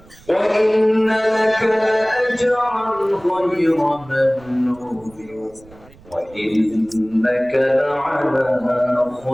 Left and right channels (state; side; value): noise; right; rumble, 25 dB below the sound